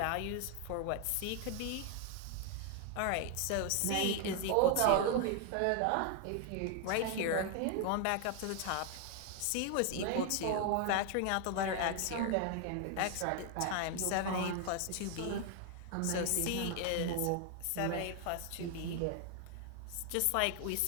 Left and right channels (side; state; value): both; different; correlation 0.01